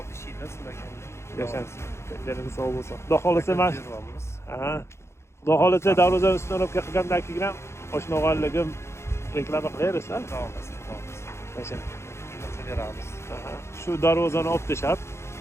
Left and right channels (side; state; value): right; late; 0.13 ms